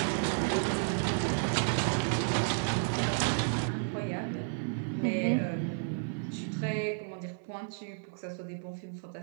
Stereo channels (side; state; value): left; silent; 56 dB below the other